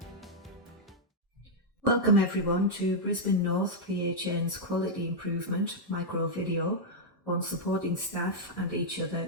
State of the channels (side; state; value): both; normal; correlation -0.04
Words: Welcome everyone to Brisbane North PHN's Quality Improvement Microvideo on supporting staff and each